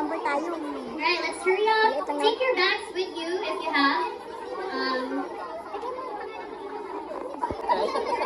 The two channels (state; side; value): identical; both; correlation 1.00